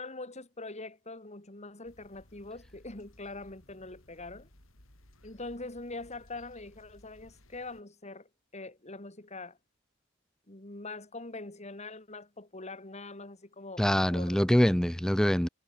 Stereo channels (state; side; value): normal; both; correlation 0.91